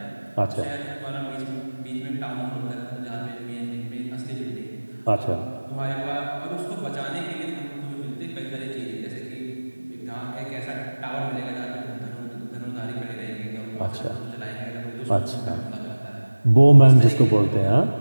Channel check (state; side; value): inverted; both; correlation -1.00